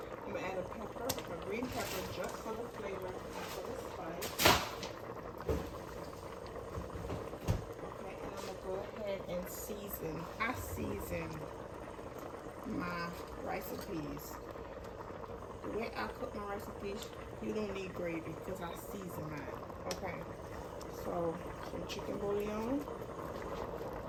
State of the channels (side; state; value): both; identical; correlation 1.00